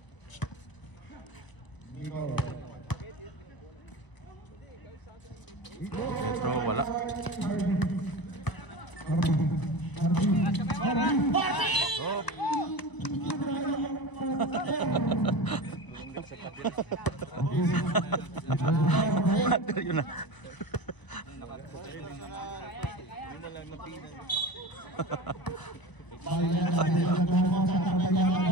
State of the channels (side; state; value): right; late; 1.0 ms